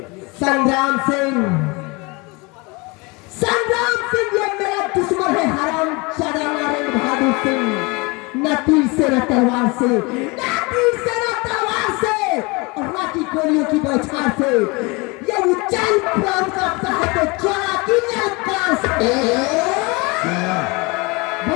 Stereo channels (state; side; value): quieter; right; 27.0 dB